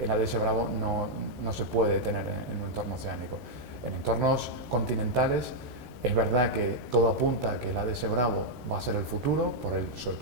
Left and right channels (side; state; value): left; late; 13 ms